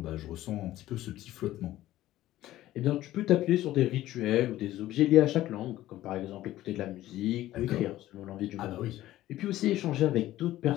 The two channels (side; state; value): right; quieter; 14.9 dB